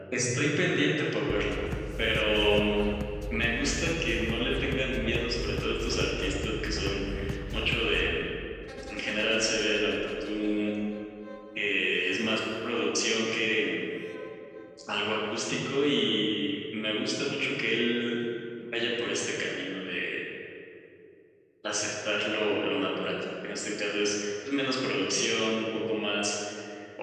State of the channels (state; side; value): identical; both; correlation 1.00